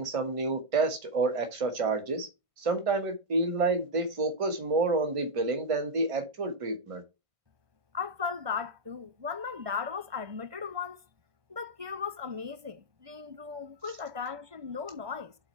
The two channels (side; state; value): left; late; 1.2 ms